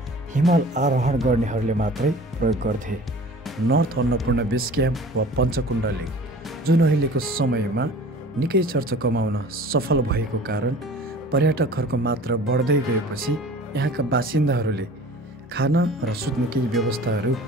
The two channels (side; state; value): both; normal; correlation 0.44